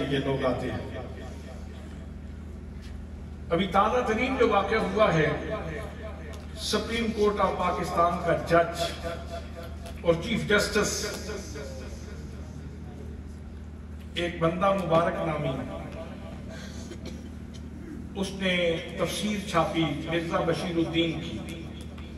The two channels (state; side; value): identical; both; correlation 1.00